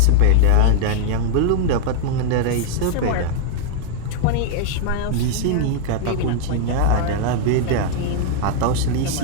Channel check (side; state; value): both; different; correlation 0.00